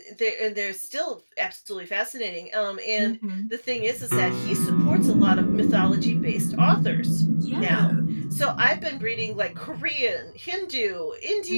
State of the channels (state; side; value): inverted; both; correlation -1.00